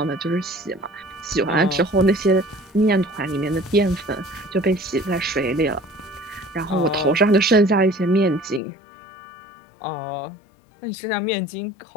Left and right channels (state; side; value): drops out; right; at 8.6 s